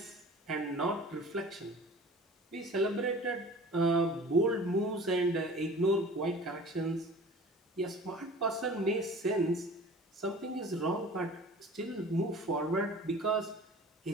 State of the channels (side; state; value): both; normal; correlation 0.43